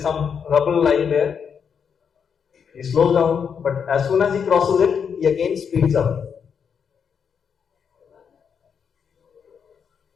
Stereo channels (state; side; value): quieter; right; 6.9 dB